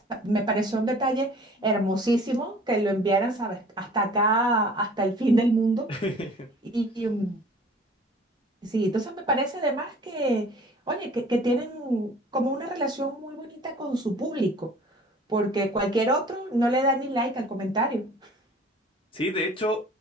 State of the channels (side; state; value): both; normal; correlation 0.49